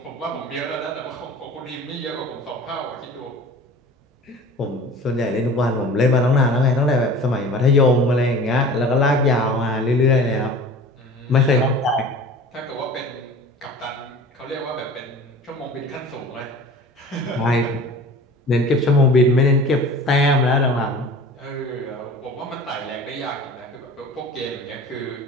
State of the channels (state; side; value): normal; both; correlation 0.41